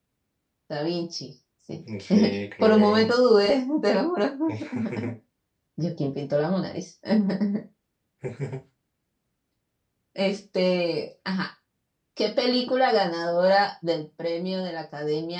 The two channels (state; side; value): identical; both; correlation 1.00